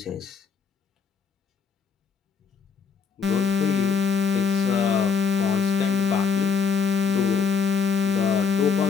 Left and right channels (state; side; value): quieter; right; 5.8 dB